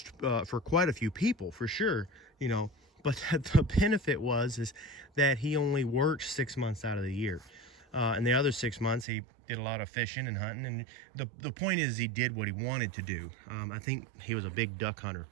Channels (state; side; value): drops out; left; at 9.1 s